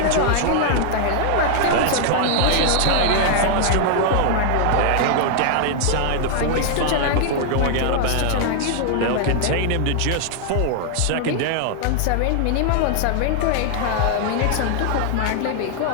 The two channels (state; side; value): different; both; correlation 0.00